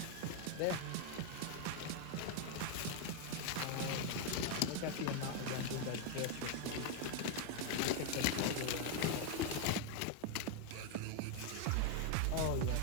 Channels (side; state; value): both; different; correlation 0.01